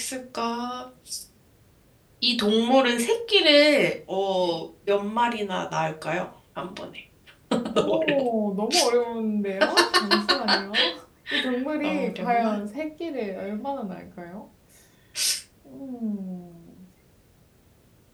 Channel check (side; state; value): both; identical; correlation 1.00